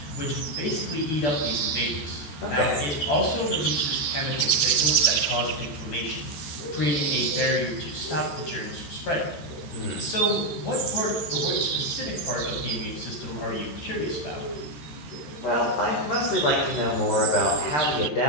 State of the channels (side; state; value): right; late; 13 ms